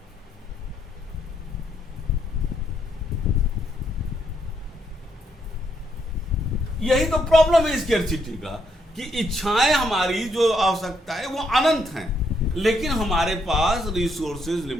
यही तो प्रॉब्लम है स्केर्सिटी का, कि इच्छाएं हमारी जो आवश्यकता है वो अनंत हैं, लेकिन हमारे पास रिसोर्सेज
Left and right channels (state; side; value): normal; both; correlation 0.75